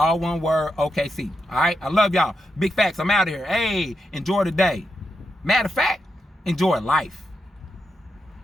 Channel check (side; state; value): both; normal; correlation 0.85